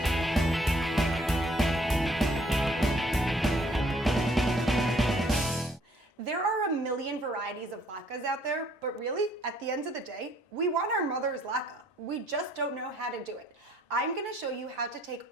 There are a million varieties of latkes out there, but really, at the end of the day, we want our mother's latke. We just don't know how to do it. I'm gonna show you how to take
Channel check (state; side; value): normal; both; correlation 0.63